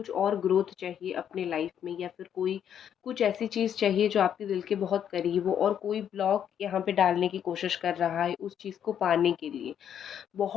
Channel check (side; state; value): right; quieter; 9.1 dB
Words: और ग्रोथ चाहिए अपने लाइफ में, या फिर कोई कुछ ऐसी चीज़ चाहिए जो आपके दिल के बहुत करीब हो। और कोई ब्लॉक यहाँ पे डालने की कोशिश कर रहा है उस चीज़ को पाने के लिए।